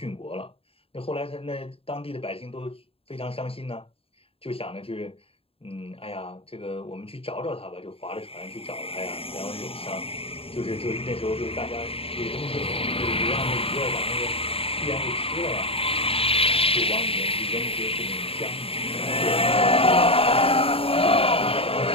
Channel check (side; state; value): right; late; 0.27 ms